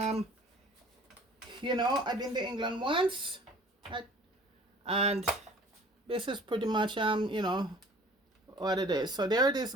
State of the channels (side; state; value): both; normal; correlation 0.49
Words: you know, I've been to England once, and this is pretty much you know, what it is. So there it is,